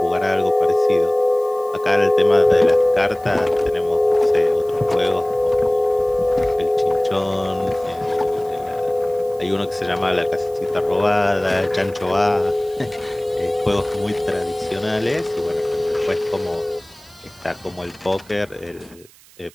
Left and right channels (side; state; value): right; noise; hiss, 26 dB below the sound